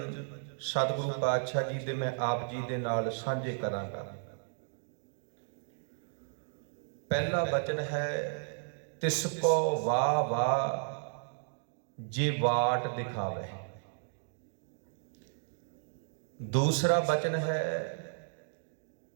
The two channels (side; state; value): left; silent; digital silence